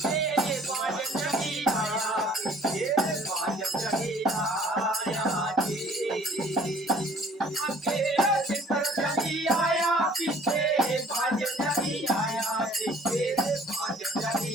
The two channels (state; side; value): normal; both; correlation 0.54